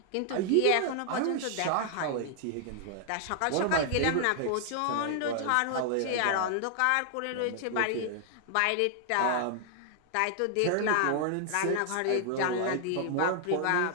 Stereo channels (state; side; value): different; both; correlation 0.00